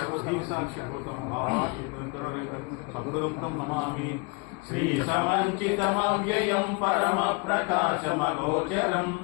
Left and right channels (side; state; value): right; quieter; 29.1 dB